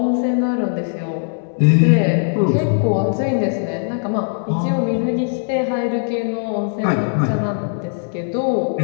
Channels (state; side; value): silent; right; digital silence